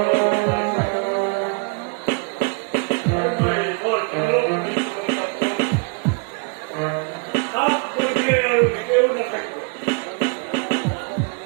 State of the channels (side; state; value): left; quieter; 36.1 dB